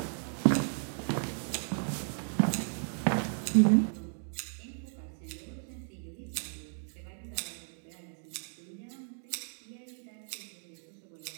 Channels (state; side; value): silent; left; 55 dB below the other